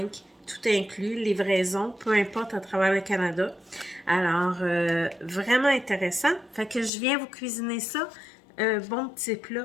tout inclus, livraison, peu importe à travers le Canada. Alors, vraiment intéressant. Fait que je viens vous cuisiner ça. Un bon petit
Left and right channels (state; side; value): drops out; right; at 6.9 s